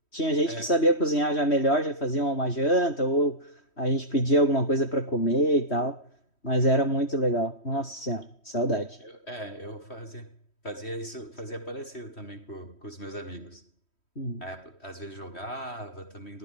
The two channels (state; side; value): late; right; 3.1 ms